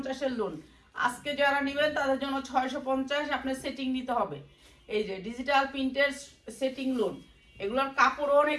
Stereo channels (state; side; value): identical; both; correlation 1.00